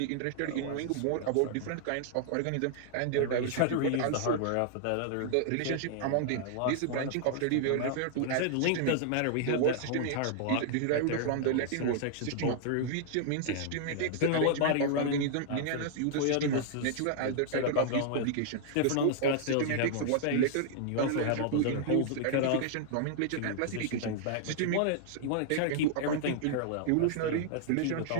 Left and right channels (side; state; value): both; different; correlation -0.01